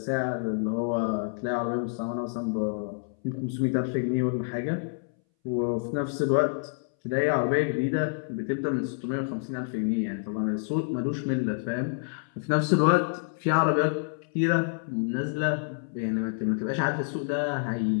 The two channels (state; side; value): silent; right; 59 dB below the other